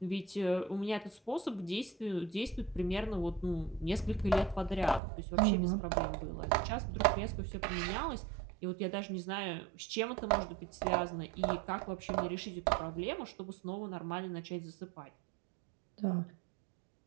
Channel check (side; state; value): left; drops out; at 5.0 s